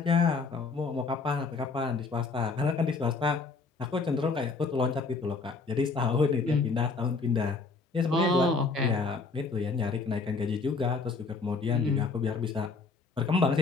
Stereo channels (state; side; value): quieter; right; 4.3 dB